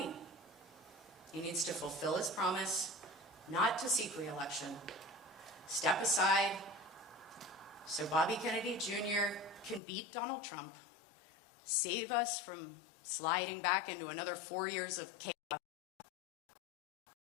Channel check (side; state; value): right; drops out; at 9.8 s